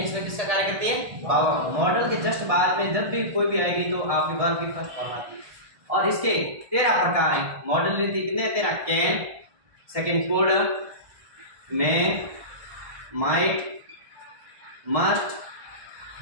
में किसका कार्य करती है, भावों। मॉडल के जस्ट बाद में जब भी कोई भी आएगी तो आपकी वर्ब की फर्स्ट फॉर्म आती है। और इसके 13 प्रकार हैं। मॉडल कितने 13? Can, second could, may, might, must,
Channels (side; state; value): left; late; 1.7 ms